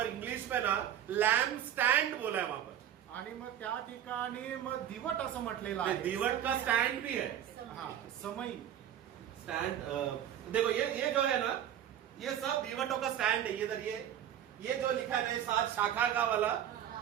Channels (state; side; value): quieter; left; 10.5 dB